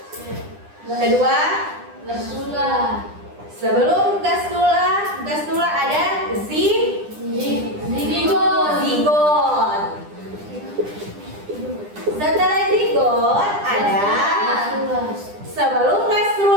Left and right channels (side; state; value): left; late; 9.9 ms